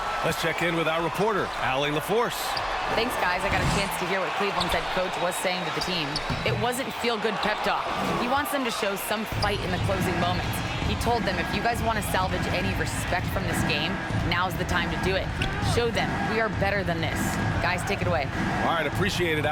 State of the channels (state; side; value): identical; both; correlation 1.00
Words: Let's check in with our reporter, Allie LaForce. Thanks, guys. I got a chance to hear what Cleveland's head coach was saying to the team. It wasn't feel-good pep talk. He wants them to show some fight in the closing moments. He told them, if you guys want to salvage any respect from this game, now's the time to do it. Show them we are better than this. Guys, take it away. All right, appreciate it,